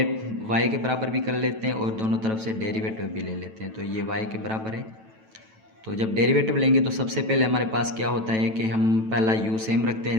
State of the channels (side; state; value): left; late; 9.1 ms